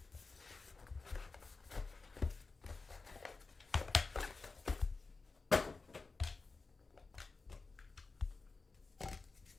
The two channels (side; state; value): right; quieter; 4.0 dB